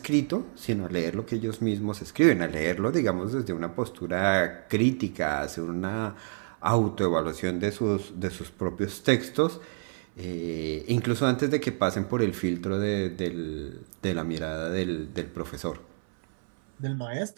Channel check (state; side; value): silent; left; 59 dB below the other